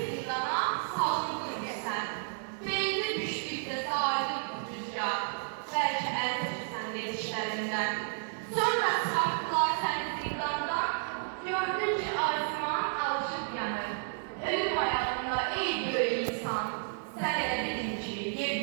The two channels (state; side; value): silent; left; digital silence